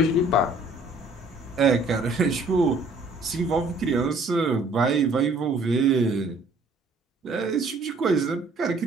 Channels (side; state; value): both; normal; correlation 0.59